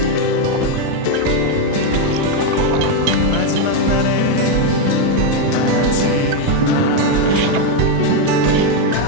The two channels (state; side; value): different; both; correlation 0.02